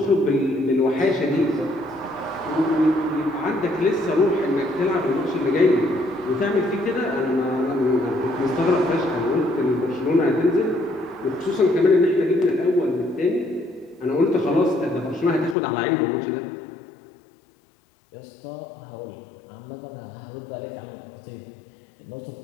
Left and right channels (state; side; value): drops out; right; at 15.6 s